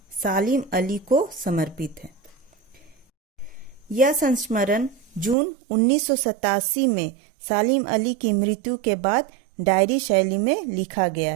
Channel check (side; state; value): left; drops out; at 5.4 s